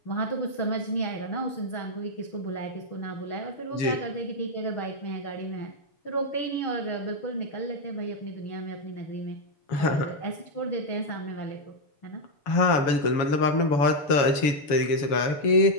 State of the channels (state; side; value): late; right; 7.1 ms